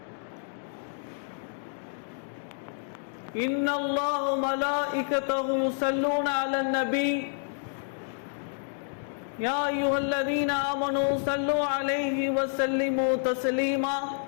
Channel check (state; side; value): silent; right; 59 dB below the other